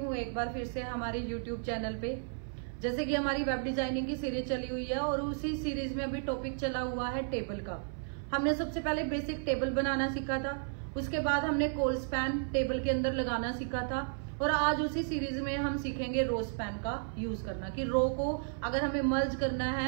एक बार फिर से हमारे यूट्यूब चैनल पे। जैसे कि हमारी वेब डिजाइनिंग की सीरीज चली हुई है और उसी सीरीज में अभी टॉपिक चला हुआ है टेबल का। हमने सबसे पहले बेसिक टेबल बनाना सीखा था, उसके बाद हमने कॉल स्पैन टेबल के अंदर लगाना सीखा था और आज उसी सीरीज में हम सीखेंगे रो स्पैन का यूज करना, कि रो को अगर हमें मर्ज करना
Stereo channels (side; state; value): left; silent; 56 dB below the other